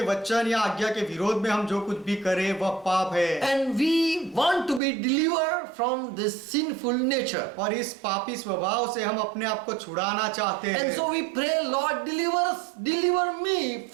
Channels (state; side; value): drops out; left; at 4.8 s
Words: वचन या आज्ञा के विरोध में हम जो कुछ भी करें वह पाप है. And we want to be delivered from this sinful nature. और इस पापी स्वभाव से हम अपने आप को छुड़ाना चाहते हैं. And so we pray, Lord, deliver me